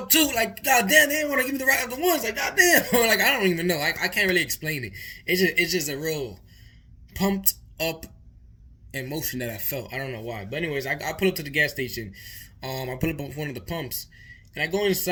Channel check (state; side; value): identical; both; correlation 1.00